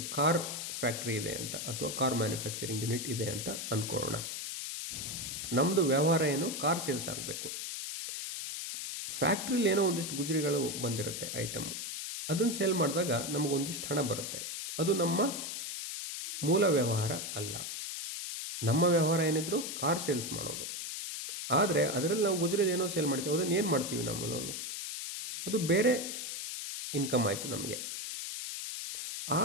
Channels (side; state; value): left; noise; hiss, 5 dB below the sound